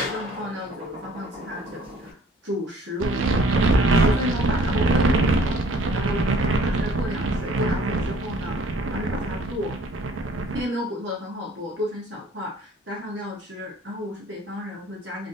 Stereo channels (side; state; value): both; normal; correlation 0.55